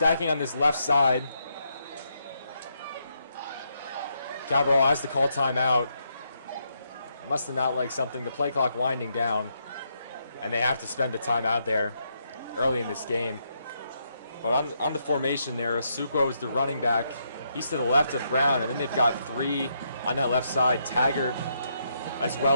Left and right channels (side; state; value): both; inverted; correlation -0.78